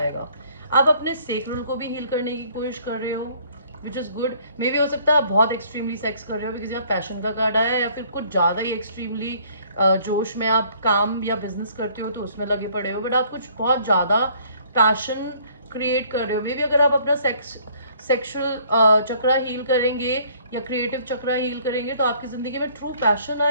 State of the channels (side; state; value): both; inverted; correlation -0.59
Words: आप अपने सेक्रल को भी हील करने की कोशिश कर रहे हो, विच इज़ गुड। मे भी हो सकता है आप बहुत एक्सट्रीमली सेक्स कर रहे हो, बिकॉज यहाँ पैशन का कार्ड आया है, या फिर कुछ ज़्यादा ही एक्सट्रीमली जोश में आप काम या बिजनेस करते हो तो उसमें लगे पड़े हो, बट आप कुछ बहुत ज़्यादा पैशन क्रिएट कर रहे हो। मे बी अगर आप अपना सेक्सुअल चक्रा हील करेंगे या क्रिएटिव चक्रा हील करेंगे तो आपकी ज़िंदगी में ट्रू पैशन